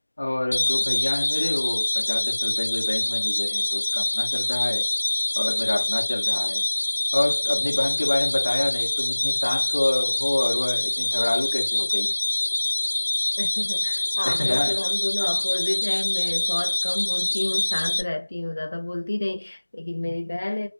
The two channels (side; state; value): both; inverted; correlation -1.00